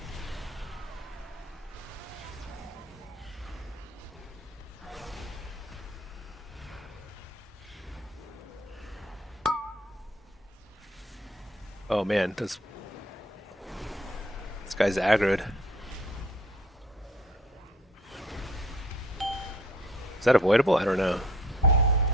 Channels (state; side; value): normal; both; correlation 0.57